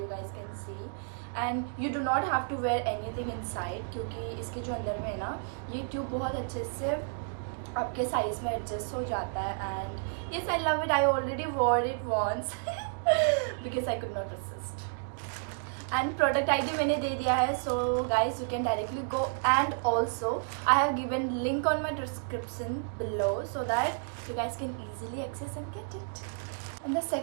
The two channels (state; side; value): silent; left; digital silence